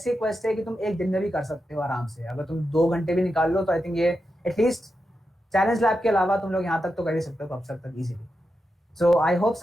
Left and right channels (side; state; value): both; normal; correlation 0.88